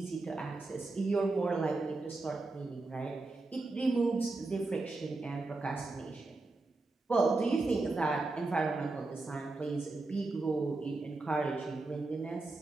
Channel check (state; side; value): quieter; left; 3.3 dB